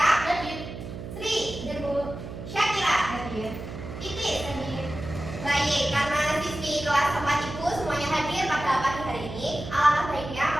Hadir. Sri. Hadir Bu. Syakira. Hadir. Titis. Hadir. Baik, karena siswi kelas 4 Ibu semuanya hadir pada pagi hari ini, alangkah baiknya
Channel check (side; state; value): right; noise; hum, 9 dB below the sound